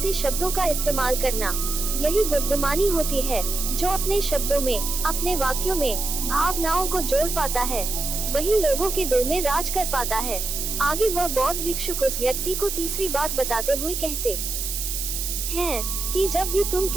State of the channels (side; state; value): right; noise; hiss, 3 dB below the sound